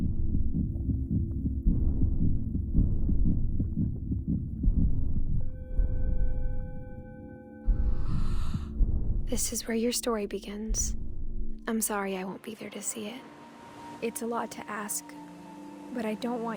This is where your story begins. I'm sorry I won't be there to see it. It's a lot to ask, but I don't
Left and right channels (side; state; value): both; identical; correlation 1.00